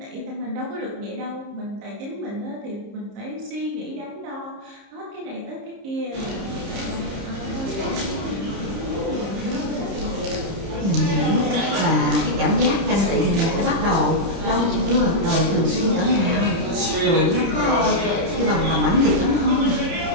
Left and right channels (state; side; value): late; left; 30 ms